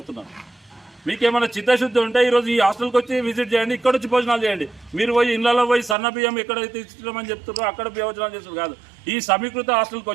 మీకేమైనా చిత్తశుద్ధి ఉంటే ఈరోజు ఈ హాస్టల్కి వచ్చి విజిట్ చేయండి, ఇక్కడ వచ్చి భోజనాలు చేయండి. మీరు పోయి ఇళ్లలో పోయి సన్న బియ్యం ఎక్కడైతే ఇస్తున్నామని చెప్తున్నారో అక్కడ భోజనాలు చేస్తారు కాదు. ఈ సమీకృత హాస్టల్కి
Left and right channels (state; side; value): drops out; left; at 6.0 s